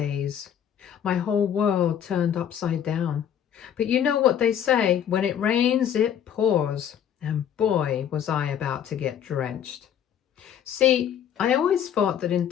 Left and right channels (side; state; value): right; quieter; 9.3 dB